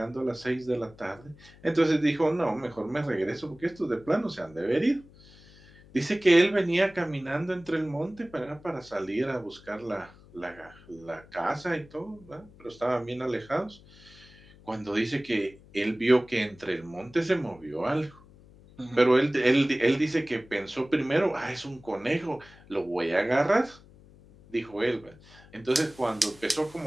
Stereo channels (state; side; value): noise; left; hum, 24 dB below the sound